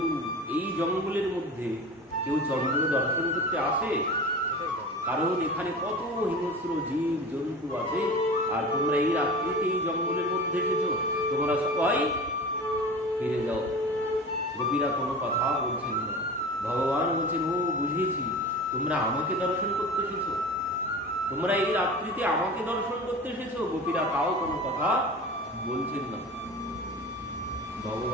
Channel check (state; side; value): normal; both; correlation 0.34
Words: এই জঙ্গলের মধ্যে কেউ চন্দ্র দর্শন করতে আসে? কারণ এখানে কত হিংস্র জীব জন্তু আছে, আর তোমরা এই রাত্রিতে এই জঙ্গলের মধ্যে এসেছো, তোমরা সবাই ফিরে যাও। গোপীরা কোনো কথা বলছেন না। ভগবান বলছেন, ও বুঝেছি, তোমরা আমাকে দর্শন করতে এসেছো, তোমরা এই রাত্রিতে আমাকে দর্শন করতে এসেছো। গোপীরা তাও কোনো কথা বলছেন না।